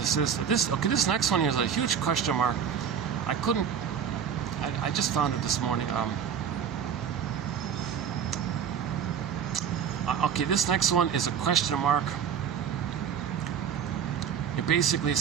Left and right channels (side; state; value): left; quieter; 7.9 dB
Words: is. This next one here is a huge question mark. I couldn't. I just found it this morning. Okay, this next one is a question mark. It basically